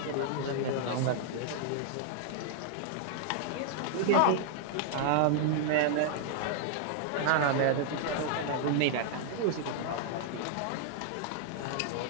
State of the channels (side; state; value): both; different; correlation -0.01